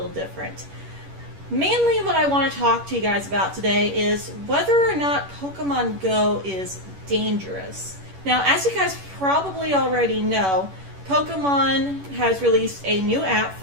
different. Mainly what I want to talk to you guys about today is whether or not Pokemon Go is dangerous. Now, as you guys probably already know, Pokemon has released a new app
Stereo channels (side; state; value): left; late; 11 ms